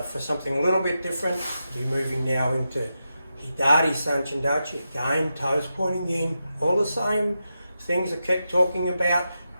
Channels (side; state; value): both; inverted; correlation -0.88